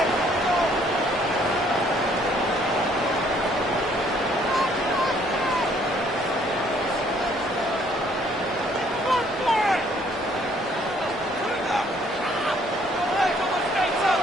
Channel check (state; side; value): normal; both; correlation 0.63